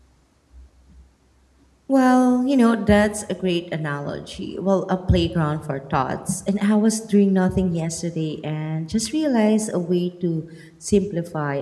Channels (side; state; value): both; identical; correlation 1.00